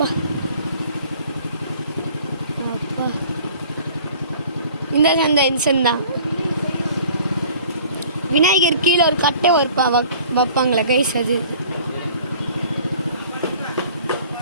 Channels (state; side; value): inverted; both; correlation -0.50